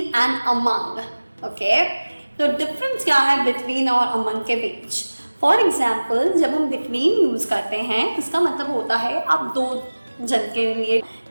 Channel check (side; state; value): both; inverted; correlation -1.00